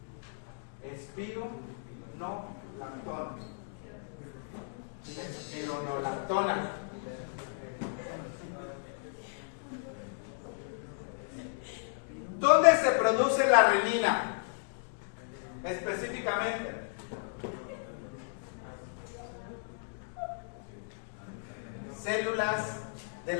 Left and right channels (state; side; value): silent; right; digital silence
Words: Espironolactona. Espironolactona. ¿Dónde se produce la renina? Específicamente. Células de